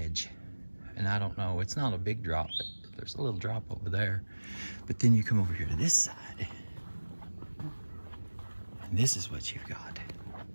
And I don't know, it's not a big drop, but there's a little drop over there. But then you come over here to this side, and this is what you've got.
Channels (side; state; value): both; inverted; correlation -1.00